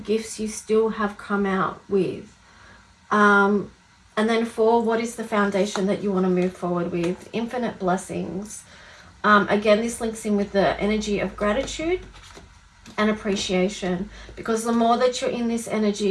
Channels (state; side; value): identical; both; correlation 1.00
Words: gifts you still have come out with. And then 4, what is the foundation that you want to move forward with? Infinite blessings. Again, this links in with the energy of gratitude and appreciation, because the more that you're in this